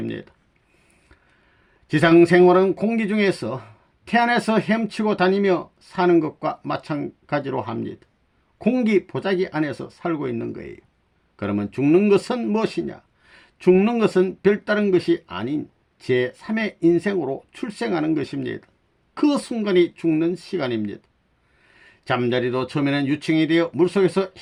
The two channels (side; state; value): both; identical; correlation 1.00